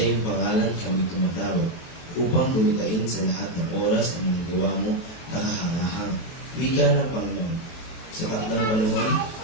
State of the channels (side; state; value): right; late; 23 ms